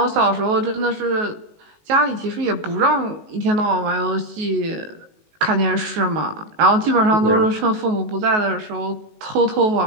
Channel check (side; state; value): left; late; 19 ms